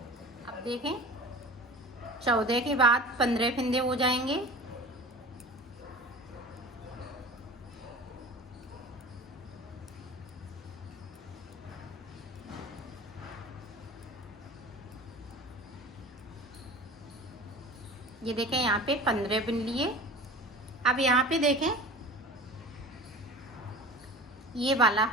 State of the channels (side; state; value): both; normal; correlation 0.38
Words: अब देखें 14 के बाद 15 फिंदे हो जाएंगे। ये देखें यहाँ पे 15 बिन लिए। अब यहाँ पे देखें ये वाला